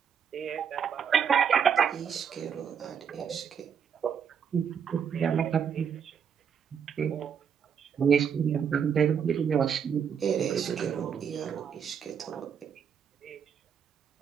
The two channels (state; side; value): quieter; left; 7.5 dB